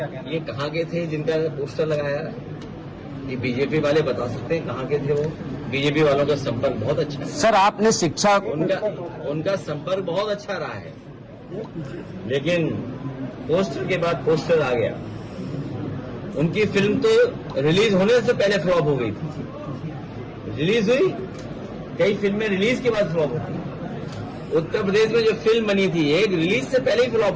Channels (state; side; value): identical; both; correlation 1.00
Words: कहना है? ये कहाँ के थे जिनका पोस्टर लगाया? ये बीजेपी वाले बता सकते हैं कहाँ के थे वो। बीजेपी वालों का संपर्क बहुत अच्छा है सर। आपने शिक्षा उनका संपर्क बहुत अच्छा रहा है, लेकिन पोस्टर के बाद पोस्टर आ गया। उनकी फिल्म तो रिलीज होने से पहले फ्लॉप हो गई थी। रिलीज हुई, कई फिल्में रिलीज के बाद फ्लॉप होती। उत्तर प्रदेश में जो फिल्म बनी थी एक रिलीज से पहले ही